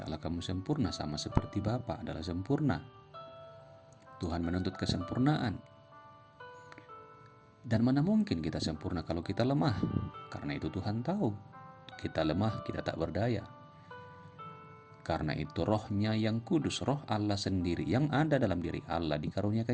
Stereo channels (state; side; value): identical; both; correlation 1.00